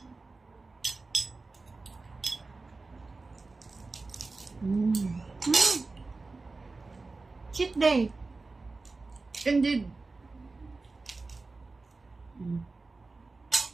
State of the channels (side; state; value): left; quieter; 3.7 dB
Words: Cheat day. Indeed.